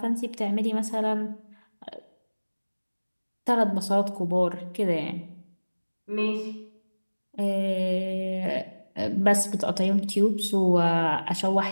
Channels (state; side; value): inverted; both; correlation -1.00